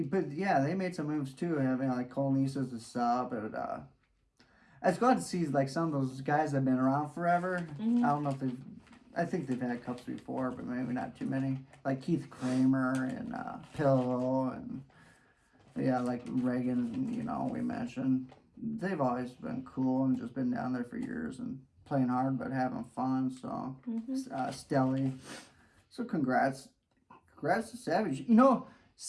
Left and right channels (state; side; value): identical; both; correlation 1.00